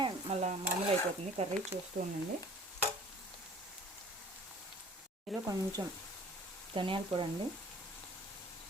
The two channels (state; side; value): normal; both; correlation 0.49